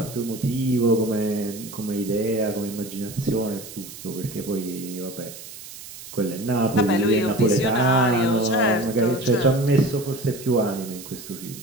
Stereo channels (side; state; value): right; noise; hiss, 14 dB below the sound